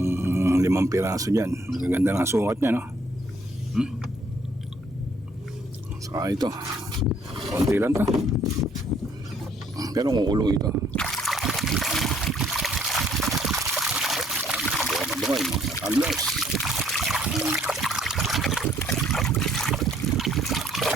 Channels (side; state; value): both; normal; correlation 0.64